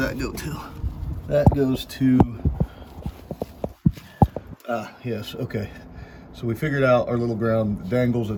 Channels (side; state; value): both; identical; correlation 1.00